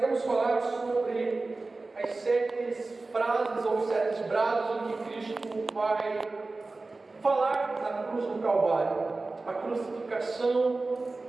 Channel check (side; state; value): left; quieter; 3.4 dB